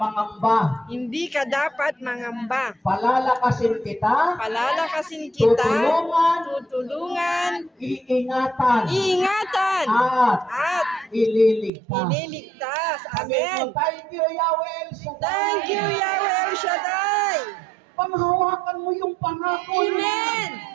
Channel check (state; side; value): drops out; left; at 11.7 s